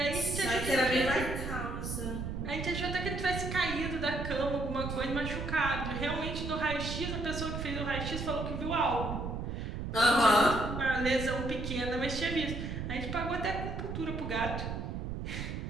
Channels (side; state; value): right; noise; rumble, 4 dB below the sound